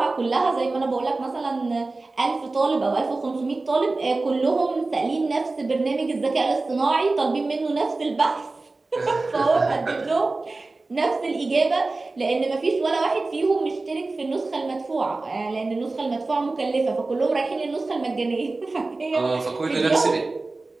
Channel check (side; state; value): left; quieter; 3.4 dB